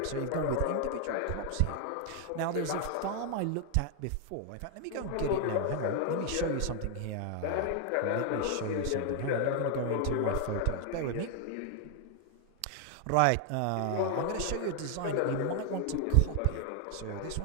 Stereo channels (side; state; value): both; different; correlation 0.00